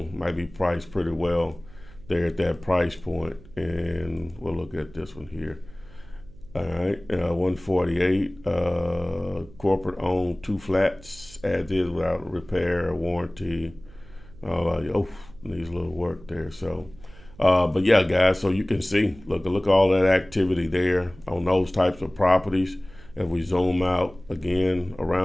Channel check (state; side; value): noise; right; hum, 22 dB below the sound